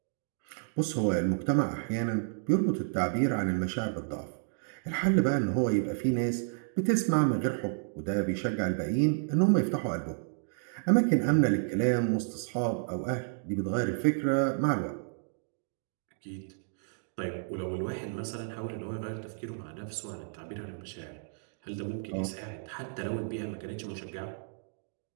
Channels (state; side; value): silent; left; digital silence